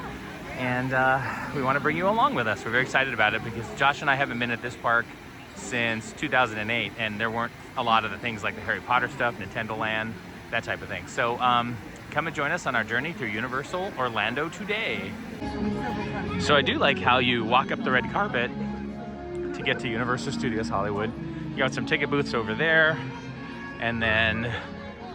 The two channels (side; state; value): both; identical; correlation 1.00